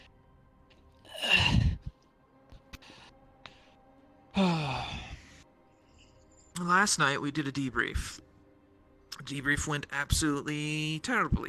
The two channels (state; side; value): identical; both; correlation 1.00